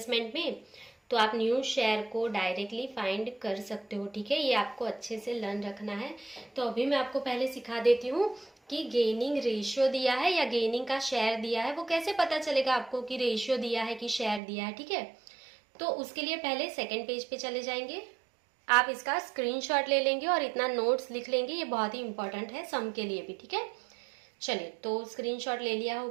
में, तो आप न्यू शेयर को डायरेक्टली फाइंड कर सकते हो, ठीक है। ये आपको अच्छे से लर्न रखना है। तो अभी मैं आपको पहले सिखा देती हूँ कि गेनिंग रेशियो दिया है या गेनिंग का शेयर दिया है, वो कैसे पता चलेगा आपको कि रेशियो दिया है कि शेयर दिया है, ठीक है। तो उसके लिए पहले सेकेंड पेज पे चले जाएंगे, आप इसका स्क्रीनशॉट ले लेंगे और इतना नोट्स लिख लेंगे, ये बहुत ही इंपॉर्टेंट है सम के लिए भी, ठीक है। चलिए तो स्क्रीनशॉट ले लिया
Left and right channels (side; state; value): left; drops out; at 14.4 s